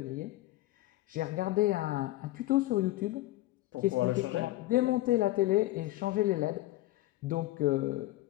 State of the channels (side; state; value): right; quieter; 17.1 dB